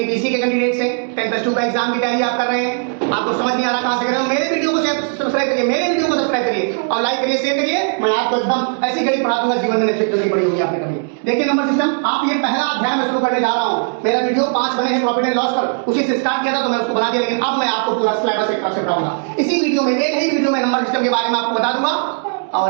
के कैंडिडेट्स हैं, 10+2 का एग्जाम की तैयारी आप कर रहे हैं, आपको समझ नहीं आ रहा कहां से कर रहे हो, मेरे वीडियो को सब्सक्राइब करिए, मेरे वीडियो को सब्सक्राइब करिए और लाइक करिए, शेयर करिए। मैं आपको एकदम ऐसी गणित पढ़ा दूंगा, जीवन में नहीं पड़ी होगी आपने कभी। देखिए नंबर सिस्टम, आप ये पहला अध्याय में शुरू करने जा रहा हूं। मेरा वीडियो 5 बने हैं प्रॉफिट एंड लॉस पर, उसी से स्टार्ट किया था तो मैं उसको बना दिया, लेकिन अब मैं आपको पूरा सिलेबस एक तरफ से पढ़ाऊंगा। इसी वीडियो में, एक ही वीडियो में नंबर सिस्टम के बारे में आपको बता दूंगा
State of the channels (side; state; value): left; silent; 60 dB below the other